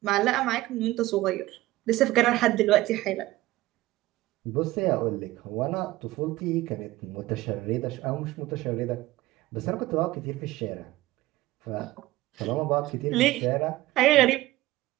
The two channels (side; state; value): left; quieter; 17.5 dB